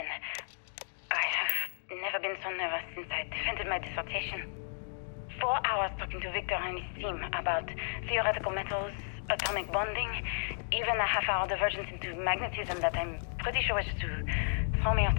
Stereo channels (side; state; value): right; silent; digital silence